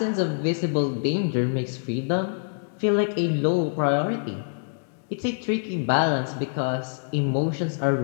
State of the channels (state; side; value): silent; right; digital silence